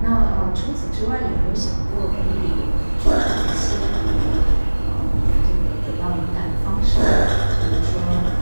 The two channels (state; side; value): inverted; both; correlation -1.00